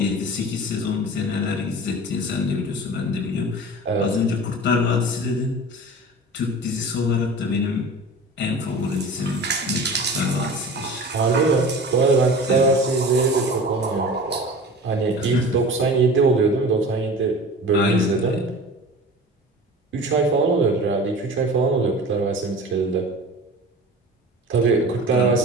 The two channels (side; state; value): both; normal; correlation 0.37